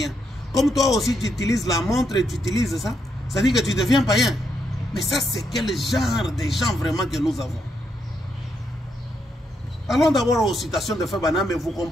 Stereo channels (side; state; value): both; normal; correlation 0.79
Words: Comme toi aussi tu utilises la montre et tu utilises ça, ça dit que tu deviens païen. Mais ça c'est quel genre de gens vraiment que nous avons? Allons d'abord aux citations de Frère Branham et vous